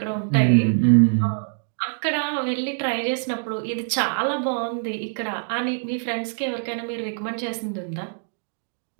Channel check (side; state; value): left; silent; digital silence